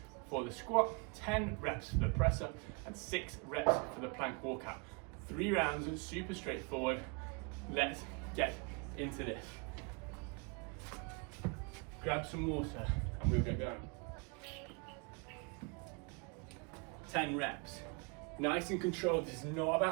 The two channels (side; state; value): left; quieter; 31.8 dB